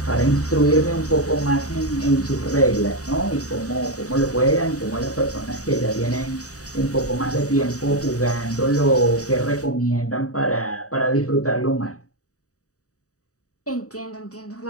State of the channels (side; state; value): right; late; 0.66 ms